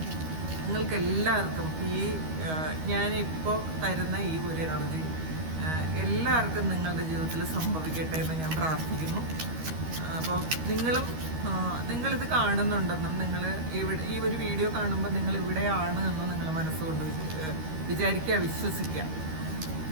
നിങ്ങൾക്ക് എല്ലാവർക്കും ഞാനിപ്പോൾ തരുന്ന ഈ ഒരു എനർജി എല്ലാവർക്കും നിങ്ങളുടെ ജീവിതത്തിൽ സംഭവിക്കട്ടെ എന്ന് ഞാൻ പ്രാർത്ഥിക്കുന്നു. അപ്പോൾ നിങ്ങളിത് കാണുന്നുണ്ടെന്നും, ഈ ഒരു വീഡിയോ കാണുമ്പോൾ നിങ്ങൾ ഇവിടെയാണ് എന്ന് നിങ്ങൾ മനസ്സുകൊണ്ട് വിചാരിക്കുക, വിശ്വസിക്കുക.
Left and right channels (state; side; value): late; left; 13 ms